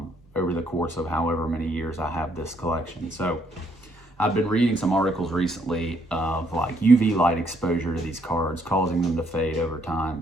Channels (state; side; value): normal; both; correlation 0.70